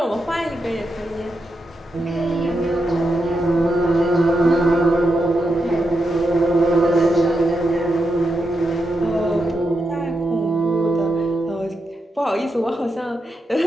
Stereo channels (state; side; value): normal; both; correlation 0.86